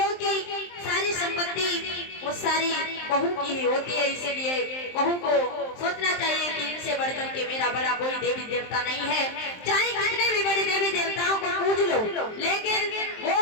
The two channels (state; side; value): late; right; 23 ms